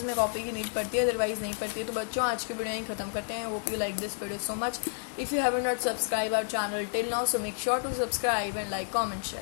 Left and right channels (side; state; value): right; silent; digital silence